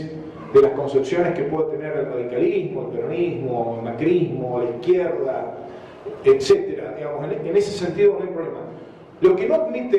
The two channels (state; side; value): identical; both; correlation 1.00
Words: de las concepciones que puede tener el radicalismo, el peronismo, el macrismo, la izquierda, etcétera. Digamos, en ese sentido no hay problema. Lo que no